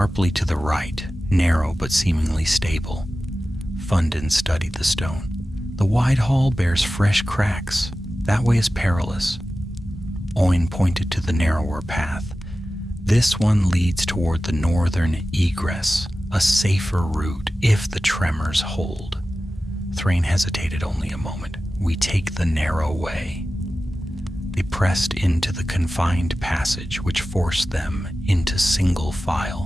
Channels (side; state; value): both; normal; correlation 0.95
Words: to the right, narrow but seemingly stable. Fundin studied the stone. The wide hall bears fresh cracks. That way is perilous. Oin pointed to the narrower path. This one leads toward the northern egress, a safer route if the tremors hold. Thráin hesitated only a moment. We take the narrow way. They pressed into the confined passage, which forced them into single